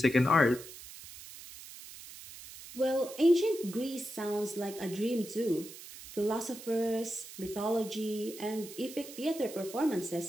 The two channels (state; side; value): noise; right; hiss, 15 dB below the sound